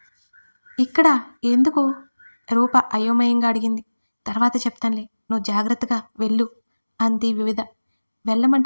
ఇక్కడ ఎందుకు? రూప అయోమయంగా అడిగింది. తర్వాత చెప్తానులే, నువ్వు జాగ్రత్తగా వెళ్ళు అంది వివిధ.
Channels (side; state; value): both; inverted; correlation -1.00